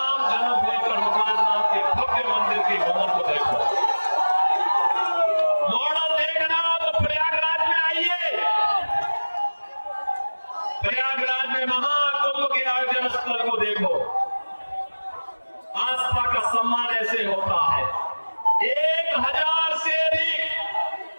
जन्मभूमि पर हनुमान नाम के भव्य मंदिर के भवन को देखो। मॉडल देखना हो तो प्रयागराज में आइए। प्रयागराज में महाकुंभ के आयोजन स्थल को देखो। आस्था का सम्मान ऐसे होता है। 1000 से अधिक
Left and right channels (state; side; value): inverted; both; correlation -1.00